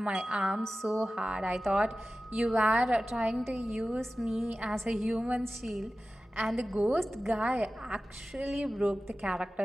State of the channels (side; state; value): both; normal; correlation 0.95